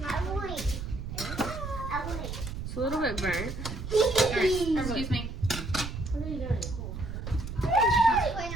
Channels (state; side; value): noise; right; rumble, 7 dB below the sound